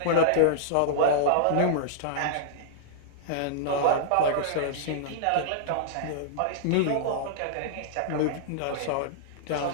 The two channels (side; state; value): both; different; correlation -0.02